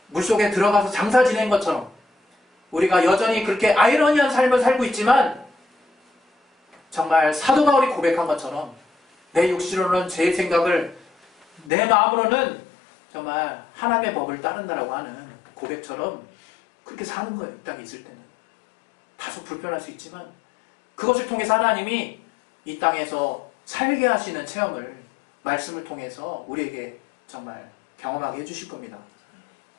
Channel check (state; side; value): drops out; right; at 11.7 s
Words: 물속에 들어가서 장사 지낸 것처럼 우리가 여전히 그렇게 아이러니한 삶을 살고 있지만 정말 사도 바울이 고백한 것처럼 내 육신으로는 죄의 생각을 내 마음으로는 정말 하나님의 법을 따른다라고 하는 고백처럼 그렇게 사는 거예요. 이 땅에 있을 때는. 다소 불편할 수 있지만 그것을 통해서 하나님이 이 땅에서 살게 하시는 체험을 말씀을 통해서 우리에게 정말 경험하게 해주실 겁니다.